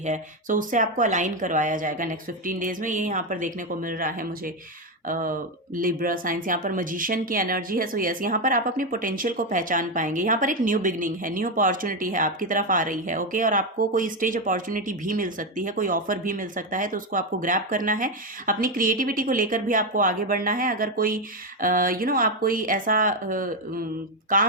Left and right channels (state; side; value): normal; both; correlation 0.08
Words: सो उससे आपको अलाइन करवाया जाएगा नेक्स्ट 15 डेज में, ये यहाँ पर देखने को मिल रहा है मुझे। लिब्रा साइंस यहाँ पर मजिशियन की एनर्जी है। सो यस, यहाँ पर आप अपनी पोटेंशियल को पहचान पाएंगे। यहाँ पर एक न्यू बिगनिंग है, न्यू अपॉर्चुनिटी है आपकी तरफ आ रही है। ओके, और आपको कोई स्टेज अपॉर्चुनिटी भी मिल सकती है, कोई ऑफर भी मिल सकता है, तो उसको आपको ग्रैब करना है। अपनी क्रिएटिविटी को लेकर भी आपको आगे बढ़ना है। अगर कोई आप कोई ऐसा